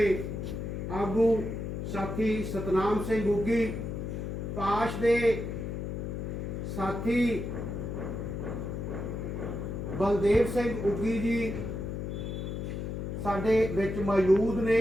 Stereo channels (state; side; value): noise; left; hum, 4 dB below the sound